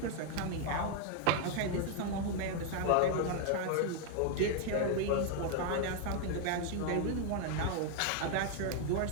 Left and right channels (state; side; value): different; both; correlation 0.00